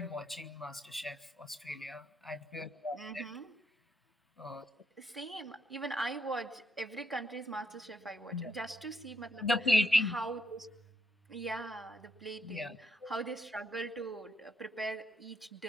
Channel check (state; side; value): normal; both; correlation 0.77